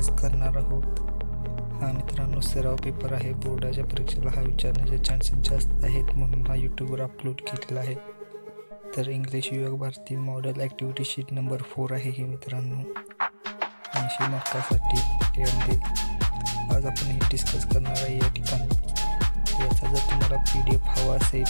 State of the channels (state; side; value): inverted; both; correlation -1.00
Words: करणार आहोत. हा मित्रांनो सराव पेपर आहे. बोर्डाच्या परीक्षेला हा विचारण्याचे चान्सेस जास्त आहेत, म्हणून हा यूट्यूबवर अपलोड केलेला आहे. तर इंग्लिश विभाग भारती मॉडेल ॲक्टिव्हिटी शीट नंबर 4 आहे ही मित्रांनो, 80 मार्कासाठी. त्यामध्ये आज आपण हे डिस्कस करणार आहे. या ठिकाणी याचा जर तुम्हाला PDF हवा असेल